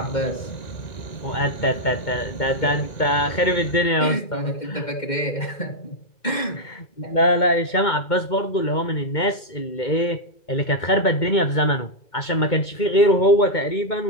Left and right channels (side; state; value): right; late; 2.2 ms